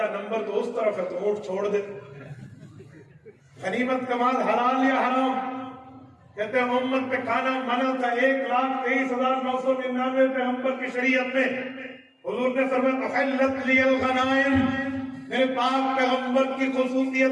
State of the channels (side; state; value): both; identical; correlation 1.00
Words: نمبر تو اس طرف ہے تو اونٹ چھوڑ دے۔ غنیمت کا مال حلال یا حرام؟ کہتے ہیں امت پہ کھانا منع تھا 1,23,999 پیغمبر کی شریعت میں۔ حضور نے فرمایا احلت لی الغنائم، میرے پاک پیغمبر کی